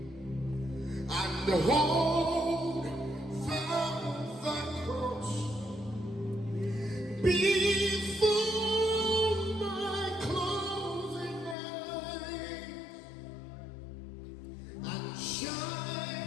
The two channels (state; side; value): drops out; right; at 11.6 s